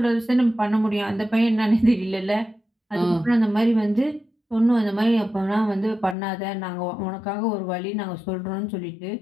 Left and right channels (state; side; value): drops out; right; at 6.2 s